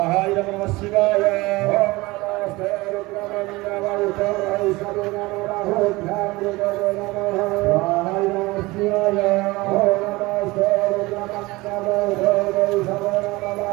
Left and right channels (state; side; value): quieter; left; 21.6 dB